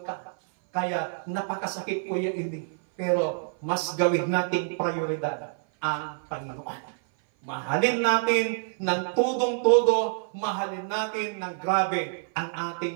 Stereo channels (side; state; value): left; silent; 56 dB below the other